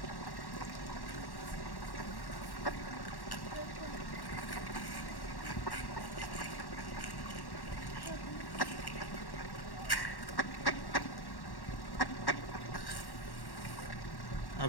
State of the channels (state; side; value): late; right; 1.1 ms